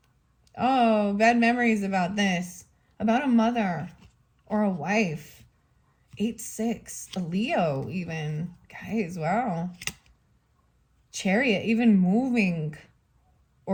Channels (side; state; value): both; identical; correlation 1.00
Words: Oh, bad memories about this. About a mother or a wife. 8-6. A Leo even. Guys, wow. Chariot, even moving